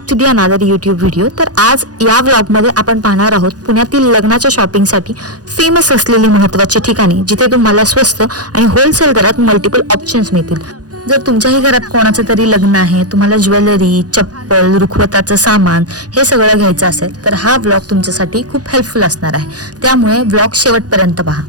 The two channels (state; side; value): late; left; 0.68 ms